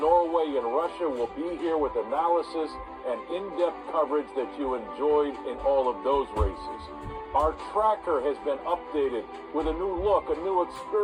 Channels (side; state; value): both; identical; correlation 1.00